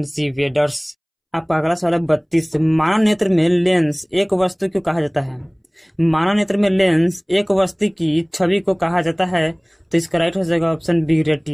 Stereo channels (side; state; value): both; identical; correlation 1.00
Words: सी वेडर्स। आपका अगला सवाल है 32। मानव नेत्र में लेंस एक वस्तु को कहा जाता है? मानव नेत्र में लेंस एक वस्तु की छवि को कहा जाता है, तो इसका राइट आंसर जगह ऑप्शन बी